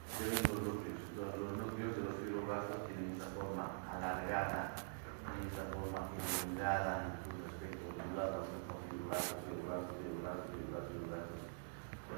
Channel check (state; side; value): silent; left; digital silence